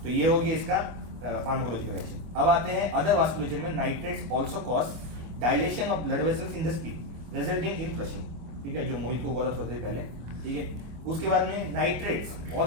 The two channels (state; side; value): late; left; 25 ms